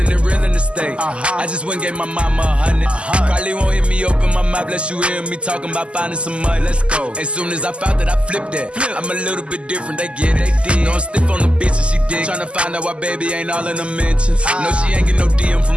in real estate. I just went and gave my mama 100. Probably won't hear me open my mouth, bless you hear me talking about finding some money. Let's go. As soon as I found that, I flipped that. I'm a little bit different, they get it. No, I'm stiff on the bitch and she dig. Tryna find out why baby ain't all in the mentions. No, she ain't get no DM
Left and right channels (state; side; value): late; left; 0.054 ms